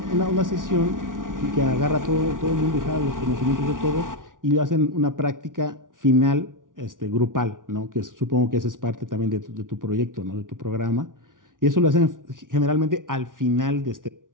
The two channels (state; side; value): late; left; 0.88 ms